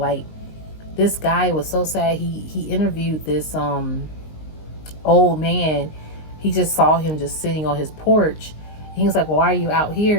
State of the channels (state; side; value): late; right; 19 ms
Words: this guy was so sad. He interviewed this old man. He just saw him just sitting on his porch. He was like, well, why are you out